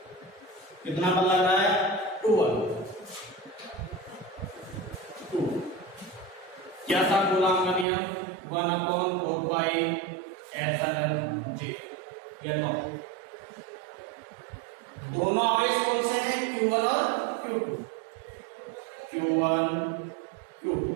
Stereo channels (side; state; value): left; drops out; at 7.9 s